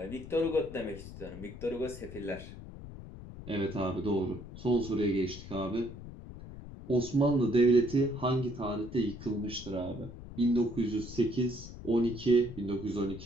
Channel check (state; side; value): noise; left; rumble, 13 dB below the sound